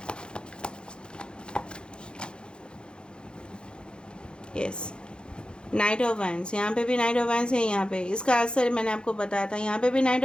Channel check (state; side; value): late; right; 0.051 ms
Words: Yes, night of wands, यहाँ पे भी नाइट ऑफ वैंड्स है, यहाँ पे इसका असर मैंने आपको बताया था, यहाँ पे भी नाइट